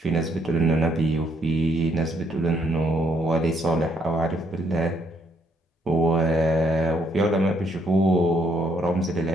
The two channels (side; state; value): both; normal; correlation 0.71